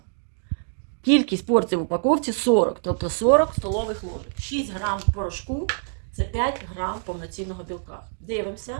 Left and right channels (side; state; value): left; silent; digital silence